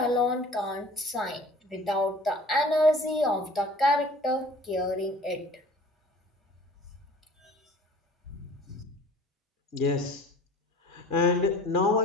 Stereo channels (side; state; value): both; normal; correlation 0.47